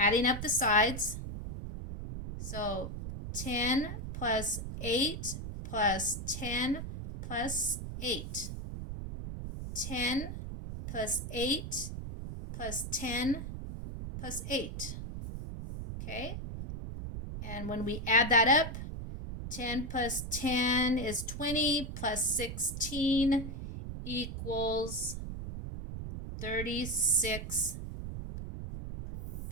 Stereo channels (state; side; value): noise; right; rumble, 7 dB below the sound